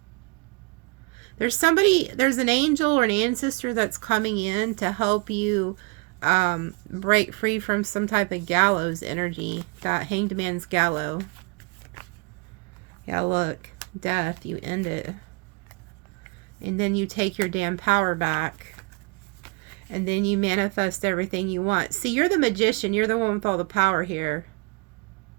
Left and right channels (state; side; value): quieter; left; 30.0 dB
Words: There's an angel or an ancestor that's coming in to help you break free from some type of gallows energy. That Hanged Man's gallows. Yeah, look. Death, you end it. And then you take your damn power back. And then you manifest everything you want. See, you're the magician. You're the one with all the power here.